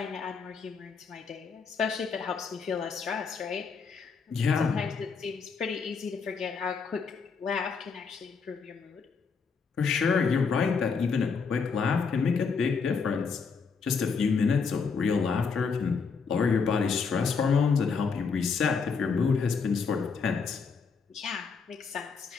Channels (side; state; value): right; quieter; 5.4 dB